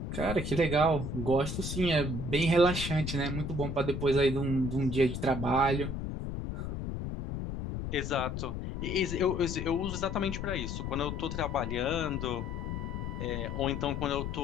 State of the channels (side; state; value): left; noise; rumble, 4 dB below the sound